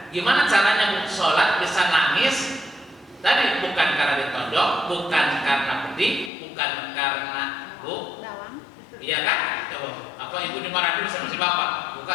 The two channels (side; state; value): right; drops out; at 6.3 s